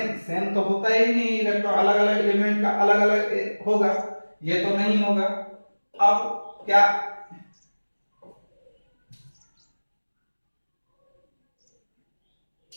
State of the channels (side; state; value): both; inverted; correlation -1.00